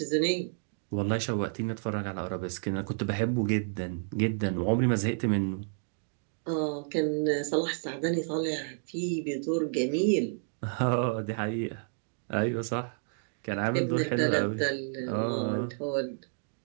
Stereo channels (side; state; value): left; silent; digital silence